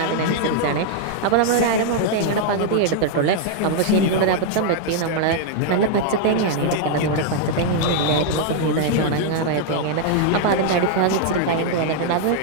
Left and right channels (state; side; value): different; both; correlation 0.00